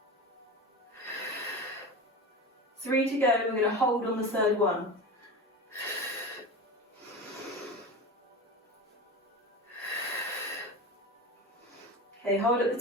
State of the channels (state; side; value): normal; both; correlation 0.27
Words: 3 to go, we're going to hold on the third one. Okay, hold at the